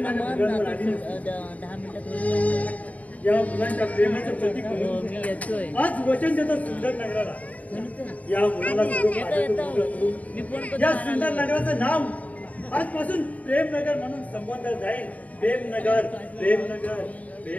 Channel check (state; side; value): late; right; 0.071 ms